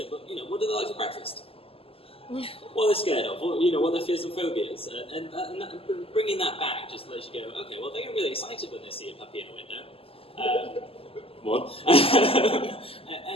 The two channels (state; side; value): late; right; 0.27 ms